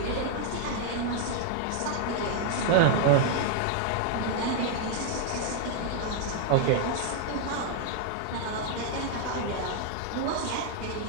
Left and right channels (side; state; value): both; different; correlation 0.00